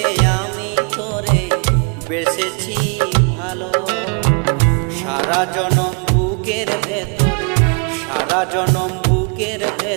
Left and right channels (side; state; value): left; quieter; 35.9 dB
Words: আমি তোরে বেসেছি ভালো। সারা জনম বুকের ভেতর, সারা জনম বুকের